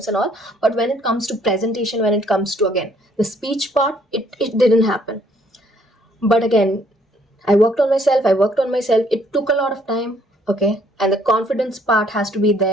and all. But when it comes to presentation, when it comes to, again, the speech part, it didn't happen. But again, I worked on myself. It took a lot of time. Okay. And the confidence part has to be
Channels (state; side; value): normal; both; correlation 0.64